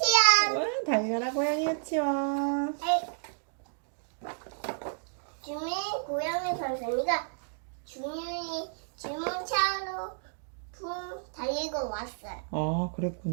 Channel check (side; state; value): left; silent; digital silence